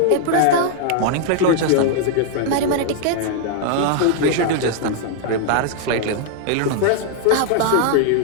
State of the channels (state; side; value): different; both; correlation -0.01